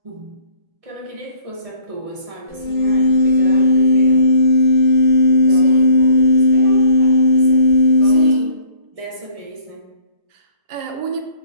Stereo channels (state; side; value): late; left; 1.6 ms